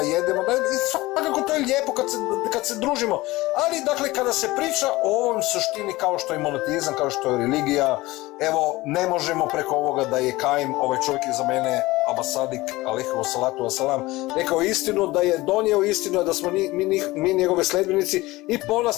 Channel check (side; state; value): right; quieter; 19.7 dB